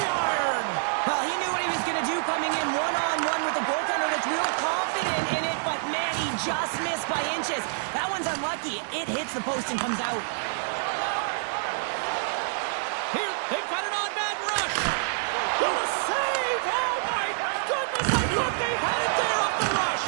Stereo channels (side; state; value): left; silent; digital silence